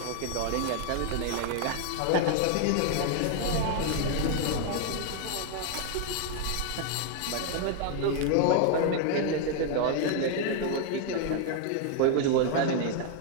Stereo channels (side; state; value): both; different; correlation 0.00